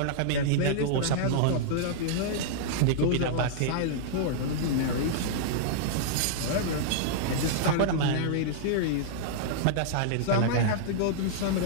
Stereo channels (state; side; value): different; both; correlation -0.02